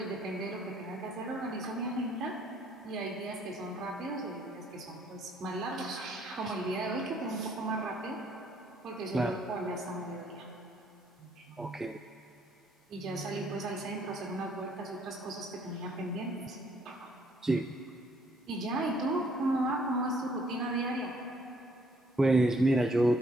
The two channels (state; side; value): normal; both; correlation 0.65